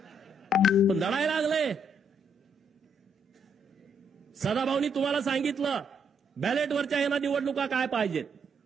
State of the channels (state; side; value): normal; both; correlation 0.73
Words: पण दडायला लागले. सदाभाऊनी तुम्हाला सांगितलं बॅलेटवरच्या यांना निवडणुका काय पाहिजेत.